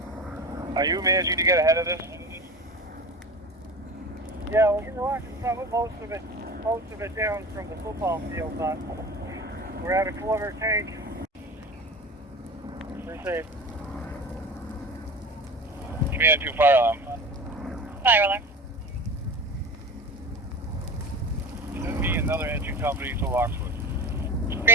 Are you managing to get ahead of this? Yeah, we're getting most of it down from the football field, but we're at a quarter tank. Received. Command 2, fire alarm. Fire alarm. Send me another engine company to Lockswood.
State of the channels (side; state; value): both; normal; correlation 0.32